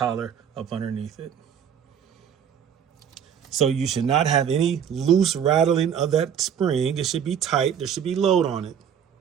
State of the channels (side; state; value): left; quieter; 8.4 dB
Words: up underneath it. So you should not have any loose rattling of that spring. It should be tight. There should be load on it.